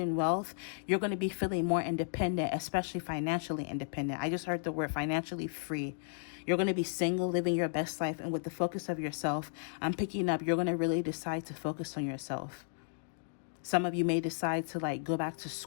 wealth, you're going to be feeling more independent, especially financially independent. I just heard the word financially free. You're going to be single, living your best life, and with the focus of yourself, I'm picking up you're going to really decide to focus on yourself. Some of you may decide to go back to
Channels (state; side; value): silent; right; digital silence